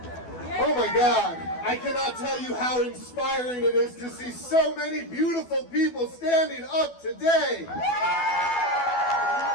Oh my God, I cannot tell you how inspiring it is to see so many beautiful people standing up today.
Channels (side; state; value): right; late; 12 ms